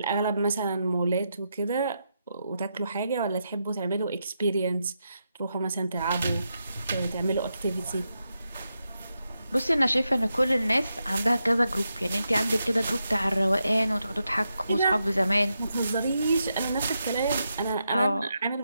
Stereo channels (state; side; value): inverted; both; correlation -0.85